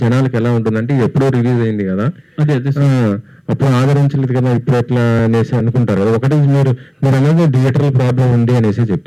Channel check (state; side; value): identical; both; correlation 1.00